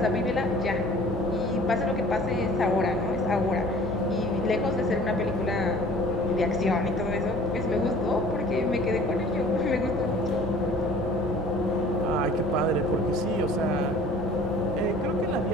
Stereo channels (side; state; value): both; normal; correlation 0.49